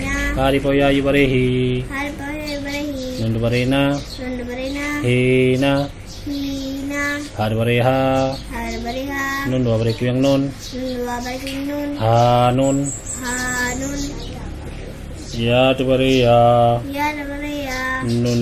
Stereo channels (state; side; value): identical; both; correlation 1.00